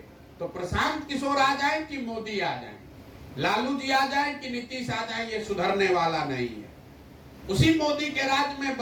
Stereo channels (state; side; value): identical; both; correlation 1.00